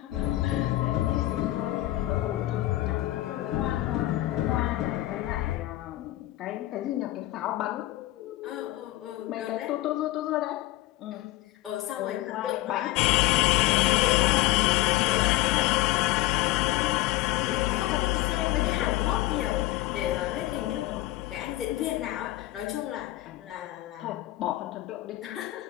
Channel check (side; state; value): right; quieter; 16.8 dB